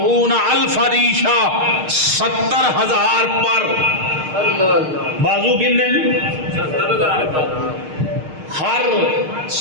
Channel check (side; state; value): left; late; 6.5 ms